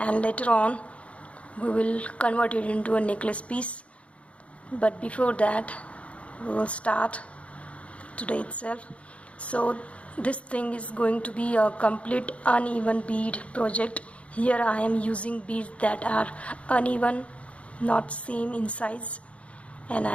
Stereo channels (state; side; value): late; right; 0.063 ms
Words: later on we will convert it into a necklace piece. But before that, we will start today itself. So this thing is going to be a complete uneven bead project. Here I am using beads that are uneven, not same in size, and